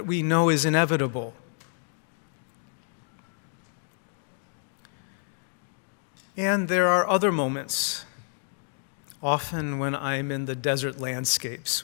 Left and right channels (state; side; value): silent; right; 59 dB below the other